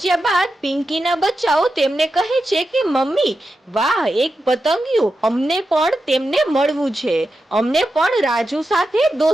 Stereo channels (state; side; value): normal; both; correlation 0.89